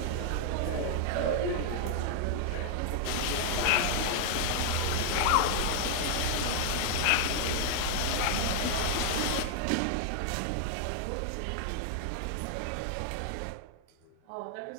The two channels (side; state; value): both; different; correlation 0.00